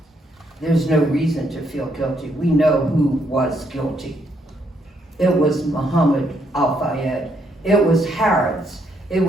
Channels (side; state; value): both; normal; correlation 0.74